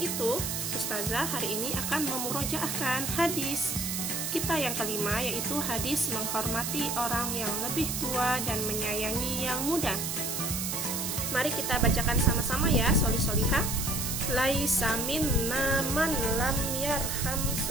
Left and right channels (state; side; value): noise; right; hiss, 2 dB below the sound